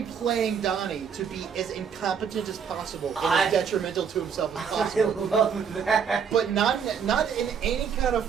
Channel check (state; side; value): quieter; left; 6.9 dB